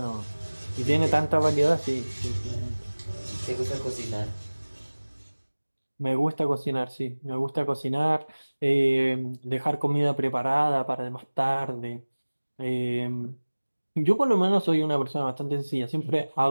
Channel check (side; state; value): both; inverted; correlation -1.00